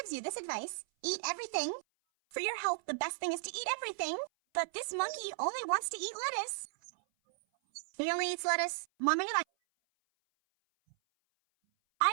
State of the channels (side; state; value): left; silent; 54 dB below the other